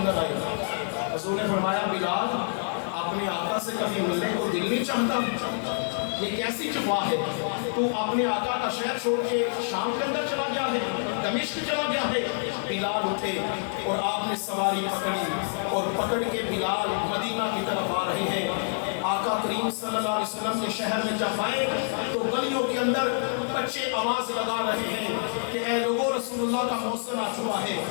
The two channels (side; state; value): right; silent; digital silence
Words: آئے۔ حضور نے فرمایا بلال اپنے آقا سے کبھی ملنے کو دل نہیں چاہتا؟ یہ کیسی جفا ہے، تو اپنے آقا کا شہر چھوڑ کے شام کے اندر چلا گیا ہے، دمشق چلا گیا ہے۔ بلال اٹھے اور آپ نے سواری پکڑی اور پکڑ کے بلال مدینہ کی طرف آ رہے ہیں۔ آقا کریم صلی اللہ علیہ وسلم کے شہر میں جب آئے تو گلیوں کے اندر بچے آواز لگا رہے ہیں کہ اے لوگو رسول اللہ کا موسم آ چکا ہے،